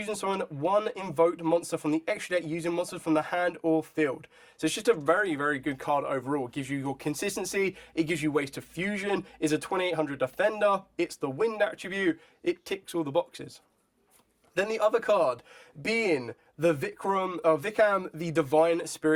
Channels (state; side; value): identical; both; correlation 1.00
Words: summon one invoked monster from the extra deck using monsters from the hand or field. So it's just a very, very good card overall. It gives you your consistency, it gives you ways to fusion, it's a 2800 defender, it's the wind attribute, it ticks all the boxes. Then the other card being the Vikram, the Divine